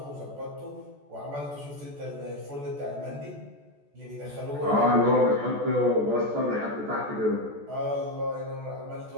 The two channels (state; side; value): late; left; 14 ms